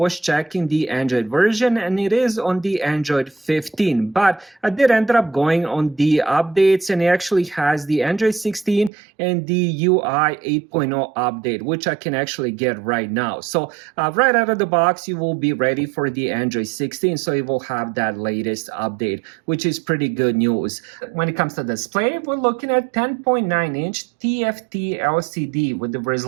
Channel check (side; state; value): left; drops out; at 8.9 s